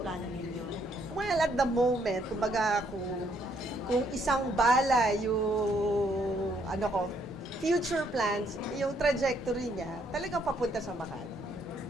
ninyo? Well, at the moment, kumbaga kung isang bala yung future plans, yung trajectory niya, talagang papunta sa Makati.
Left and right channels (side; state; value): both; normal; correlation 0.70